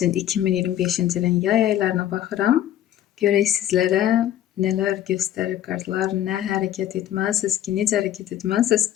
2025-ci ilin yay aylarına baxıram. Görək sizlərə nələr göstərir kartlar, nə hərəkət etməlisiniz ki, necə hərəkət etməlisiniz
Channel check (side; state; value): right; quieter; 12.0 dB